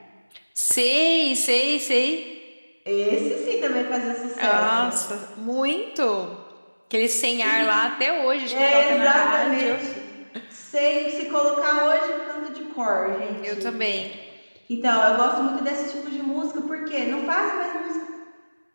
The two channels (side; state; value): both; inverted; correlation -1.00